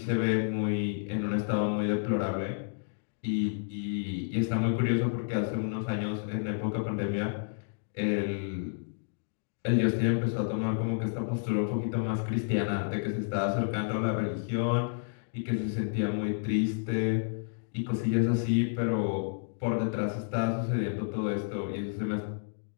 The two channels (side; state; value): right; silent; digital silence